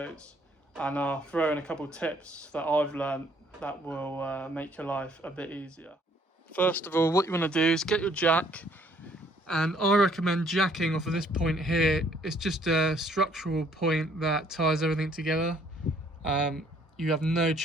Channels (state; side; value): normal; both; correlation 0.63